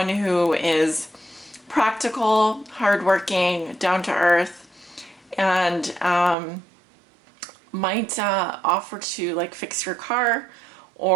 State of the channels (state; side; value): drops out; left; at 6.4 s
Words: who is practical, hardworking, down to earth, and might offer to like fix your car